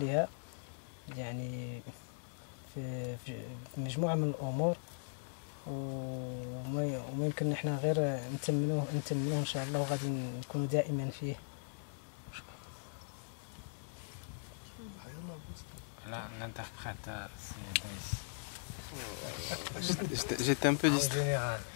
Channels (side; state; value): right; silent; digital silence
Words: يعني في مجموعه من الامور. وما يمكن احنا غير نتمنوه ان شاء الله، وغادي نكونوا دائما فيه. لا l'interprète J'étais